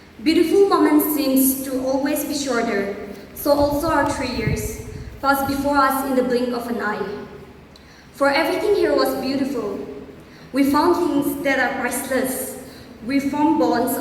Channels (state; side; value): identical; both; correlation 1.00